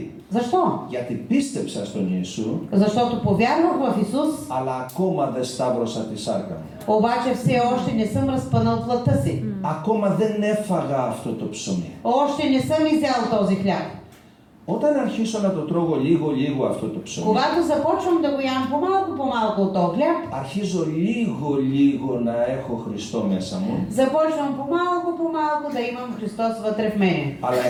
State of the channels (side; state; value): both; identical; correlation 1.00